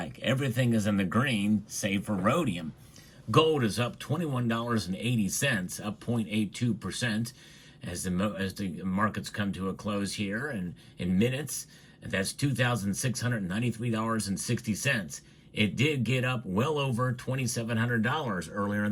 Everything is in the green, save for rhodium. Gold is up $21.80, up 0.82%, as the markets come to a close here, and in minutes, that's $2,693.60. It did get up well over $2,700 earlier in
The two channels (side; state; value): both; identical; correlation 1.00